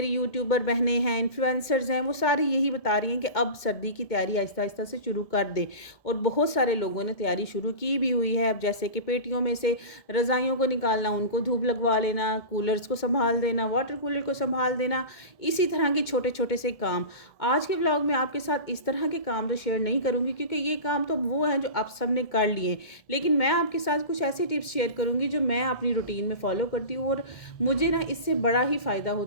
यूट्यूबर बहनें हैं, इन्फ्लुएंसर्स हैं, वो सारी यही बता रही हैं कि अब सर्दी की तैयारी आहिस्ता आहिस्ता से शुरू कर दे। और बहुत सारे लोगों ने तैयारी शुरू की भी हुई है। अब जैसे कि पेटियों में से रज़ाइयों को निकालना, उनको धूप लगवा लेना, कूलर्स को संभाल देना, वाटर कूलर को संभाल देना, इसी तरह के छोटे छोटे से काम। आज के ब्लॉग में आपके साथ इस तरह के काम तो शेयर नहीं करूंगी क्योंकि ये काम तो वो हैं जो आप सब ने कर लिए, लेकिन मैं आपके साथ कुछ ऐसे टिप्स शेयर करूंगी जो मैं अपनी रूटीन में फॉलो करती हूँ और मुझे ना इससे बड़ा ही फ़ायदा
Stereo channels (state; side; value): late; right; 2.1 ms